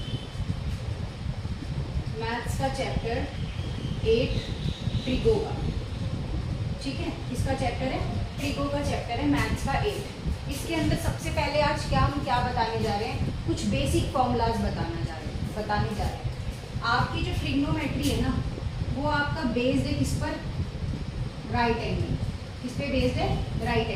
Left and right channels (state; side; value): identical; both; correlation 1.00